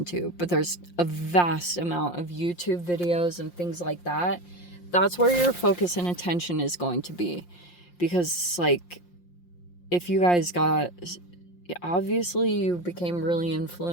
but there's a vast amount of YouTube videos and things like that. That's where your focus and attention is going to be, because like, if you guys obviously you became really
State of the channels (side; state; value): right; late; 5.7 ms